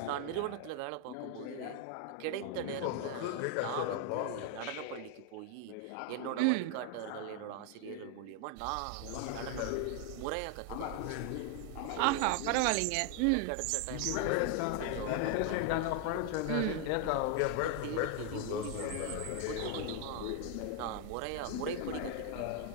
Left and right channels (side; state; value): both; different; correlation 0.00